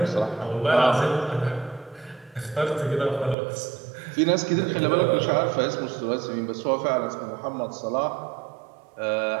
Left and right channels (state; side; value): drops out; left; at 3.4 s